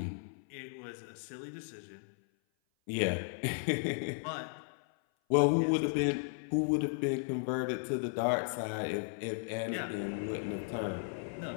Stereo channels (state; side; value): silent; right; 54 dB below the other